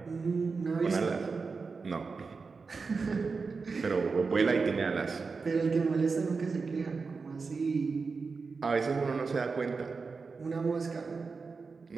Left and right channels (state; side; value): quieter; left; 4.6 dB